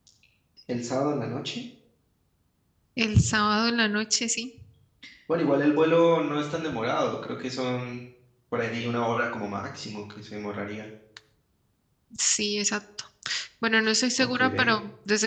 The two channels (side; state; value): both; identical; correlation 1.00